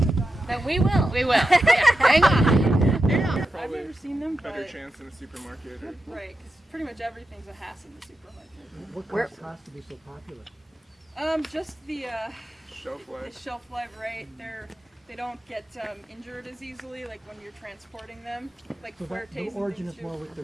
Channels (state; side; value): normal; both; correlation 0.90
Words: But we will. We will. Yeah, hang on. I've never seen them, Better but chance in a supermarket. Or... right, because pretty much everything's a hass in the supermarket. What caused to be so popular? Just the Shelf life. shelf life, right? They don't get injured as easily, like when you're transporting them, like So that, Fuertes the and origin things is more too. with the